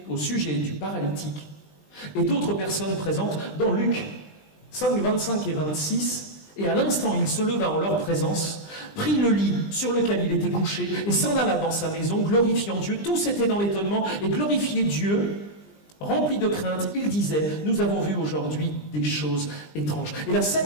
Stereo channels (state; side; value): late; right; 20 ms